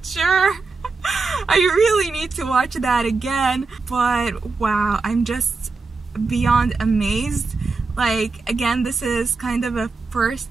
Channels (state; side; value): quieter; left; 4.1 dB